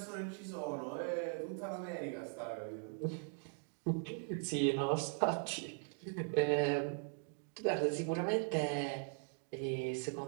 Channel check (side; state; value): left; silent; 51 dB below the other